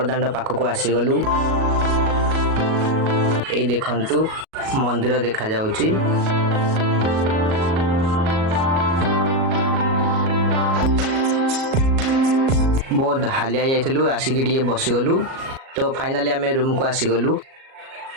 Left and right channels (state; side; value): late; left; 37 ms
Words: पाखक आसीगलु। ए देखंतु मंदिर देखा जाउची। बहुत हालिया जाइथिलु आसिकी टिके बसिगलु। तो फाइनाली आमे रूम को आसीगलु।